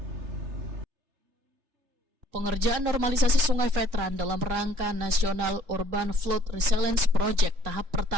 Pengerjaan normalisasi Sungai Veteran dalam rangka National Urban Flood Resilience Project tahap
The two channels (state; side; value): late; left; 3.3 ms